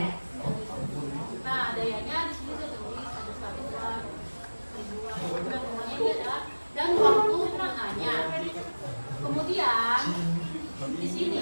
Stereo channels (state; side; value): inverted; both; correlation -1.00